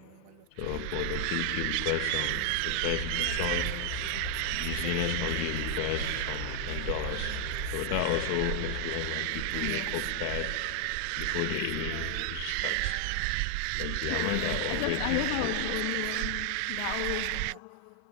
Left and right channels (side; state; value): both; different; correlation 0.00